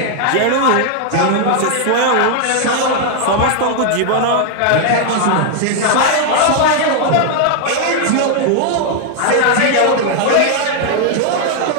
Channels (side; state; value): both; different; correlation 0.00